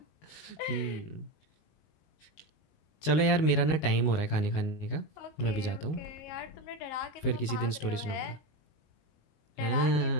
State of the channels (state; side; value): late; right; 19 ms